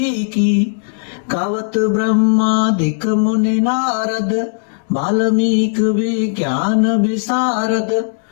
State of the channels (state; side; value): silent; right; digital silence